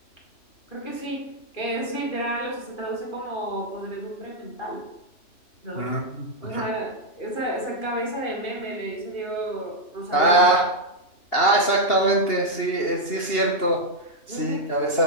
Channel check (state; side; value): late; right; 2.8 ms